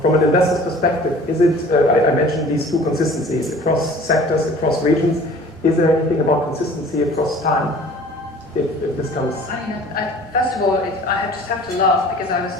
an investor's perspective, is it, I mentioned these two consistencies across sectors, across regions. Is there anything about consistency across time? If this comes... I mean, first of all, I just have to laugh because I was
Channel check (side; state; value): both; normal; correlation 0.47